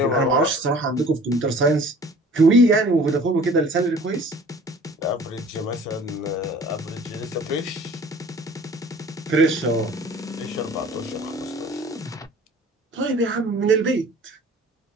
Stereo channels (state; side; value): normal; both; correlation 0.48